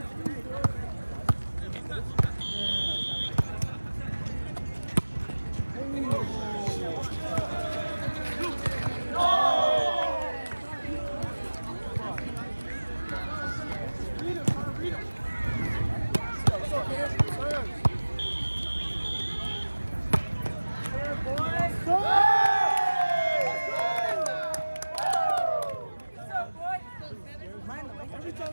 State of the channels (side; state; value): both; inverted; correlation -1.00